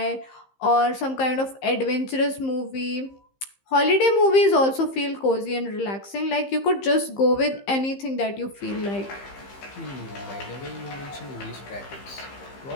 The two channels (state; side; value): late; right; 15 ms